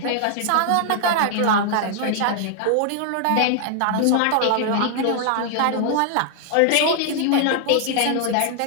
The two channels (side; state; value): both; different; correlation 0.00